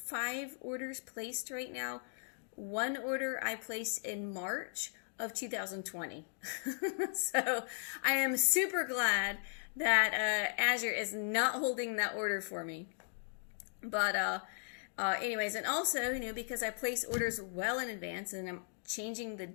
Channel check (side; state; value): right; silent; digital silence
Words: orders placed right now. One order I placed in March of 2020. So I am super glad that Azure is not holding that order for me. But anyways, and also, because I place orders well in advance and I'm changing the